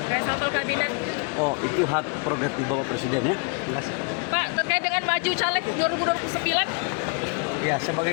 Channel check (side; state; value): right; quieter; 37.0 dB